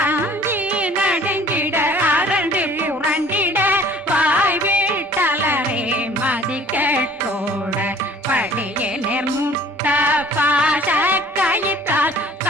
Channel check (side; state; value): both; normal; correlation 0.52